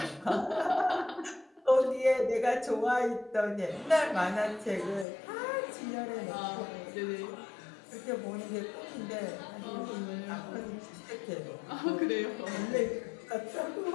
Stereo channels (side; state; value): right; drops out; at 5.1 s